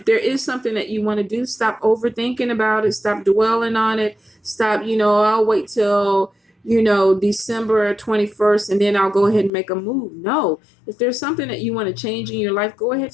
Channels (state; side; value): drops out; right; at 9.5 s